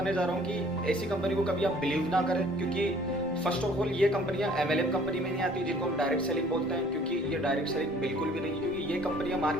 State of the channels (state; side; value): normal; both; correlation 0.55